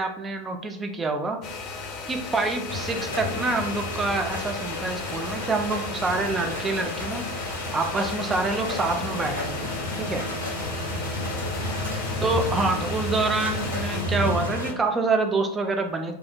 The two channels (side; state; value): both; normal; correlation 0.46